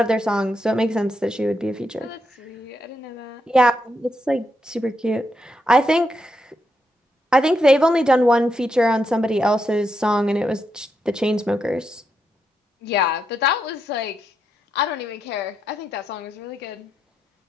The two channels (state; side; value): normal; both; correlation 0.82